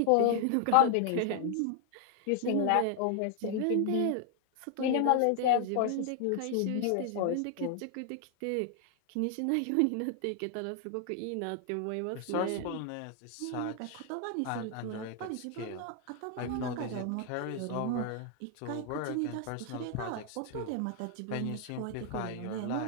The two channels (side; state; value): both; different; correlation 0.00